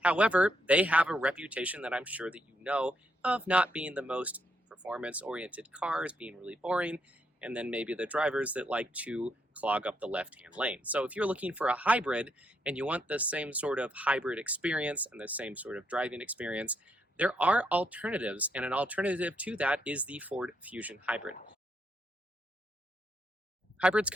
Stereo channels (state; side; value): normal; both; correlation 0.77